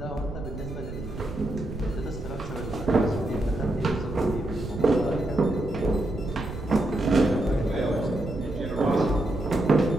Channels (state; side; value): noise; right; rumble, 9 dB below the sound